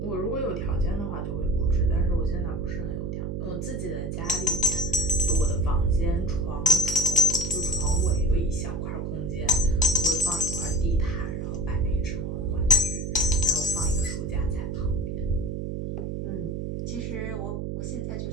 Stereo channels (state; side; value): noise; right; hum, 4 dB below the sound